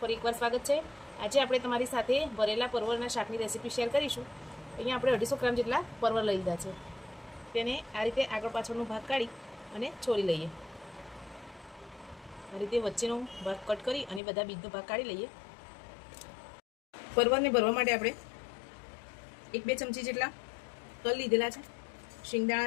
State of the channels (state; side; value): drops out; right; at 14.2 s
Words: એકવાર સ્વાગત છે। આજે આપણે તમારી સાથે ભરેલા પરવળના શાકની રેસીપી શેર કરીશું। અહીંયા આપણે 250 ગ્રામ જેટલા પરવળ લઈ લીધા છે। તેને આ રીતે આગળ પાછળનો ભાગ કાઢી અને છોલી લઈએ। આ રીતે વચ્ચેનો ભાગ કટ કરી અને બધા બીજનો ભાગ કાઢી લઈએ। પરવળને ભરવા માટે આપણે 1-2 ચમચી જેટલા તલ લીધેલા છે,